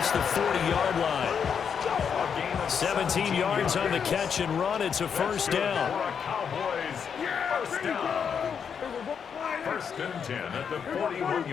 the 40-yard line. 17 yards on the catch and run. It's a first down. First down. First and 10 at the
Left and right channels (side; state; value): right; quieter; 7.0 dB